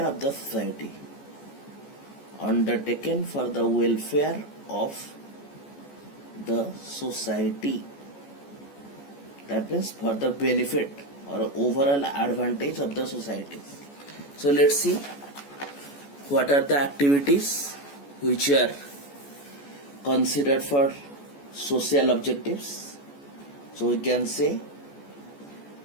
of the society, that means for the benefit or overall advantage of the society. So let's see what are the activities which are considered for social objectives. So we can say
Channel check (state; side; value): late; right; 14 ms